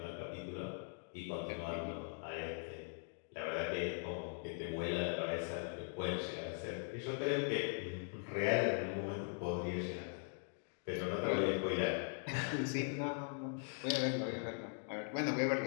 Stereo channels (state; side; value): silent; right; 50 dB below the other